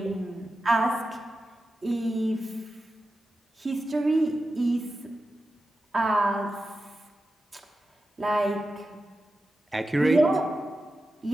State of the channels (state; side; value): normal; both; correlation 0.92